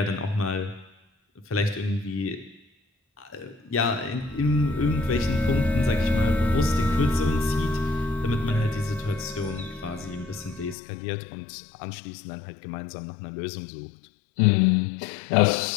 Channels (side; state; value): right; drops out; at 10.8 s